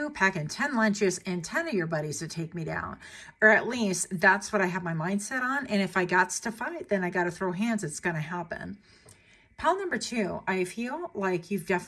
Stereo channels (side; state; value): both; identical; correlation 1.00